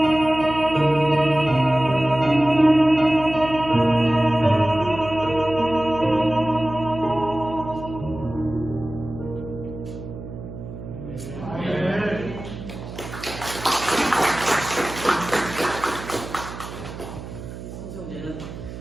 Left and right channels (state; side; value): noise; right; hum, 11 dB below the sound